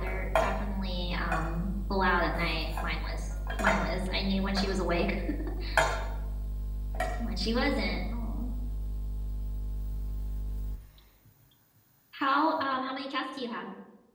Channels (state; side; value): identical; both; correlation 1.00